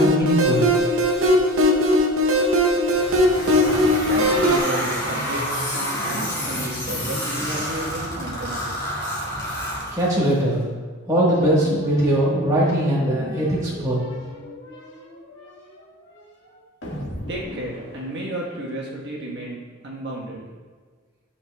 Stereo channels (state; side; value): normal; both; correlation 0.33